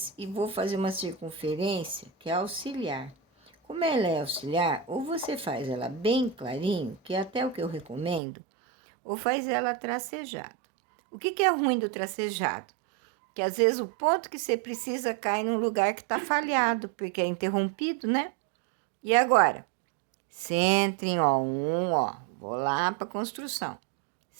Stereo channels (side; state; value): left; drops out; at 8.2 s